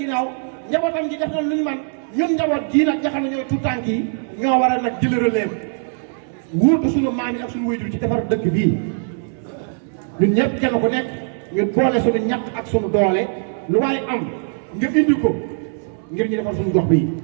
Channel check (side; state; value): left; silent; 65 dB below the other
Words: njabootam ji def na lu ñu man ñun njaboot jii nag nga xam ne ñooy tout tànk yi ñoo war a nag jël relève wuutu suñu maam yi ak suñu waajur ci defar dëkk bii ñun ñëpp kenn ku nekk ñu boole suñu ñàkk ak suñu doole lu waaye am nga indi ko ngir ñu defar suñu gox bii